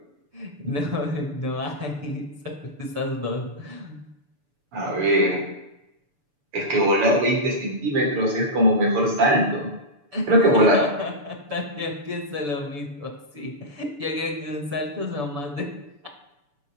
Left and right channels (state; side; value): late; left; 6.9 ms